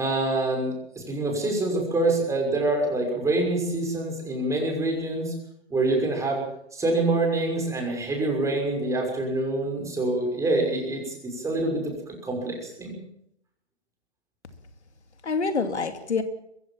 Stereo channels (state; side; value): normal; both; correlation 0.41